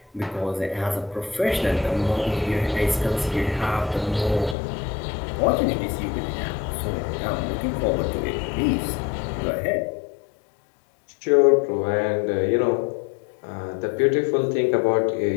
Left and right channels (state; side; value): drops out; right; at 4.5 s